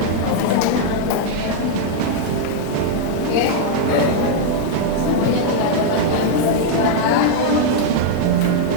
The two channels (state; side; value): different; both; correlation -0.01